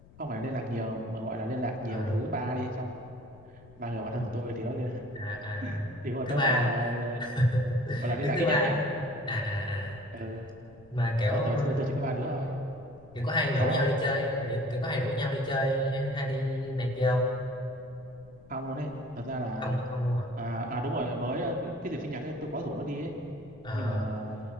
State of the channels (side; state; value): left; noise; rumble, 23 dB below the sound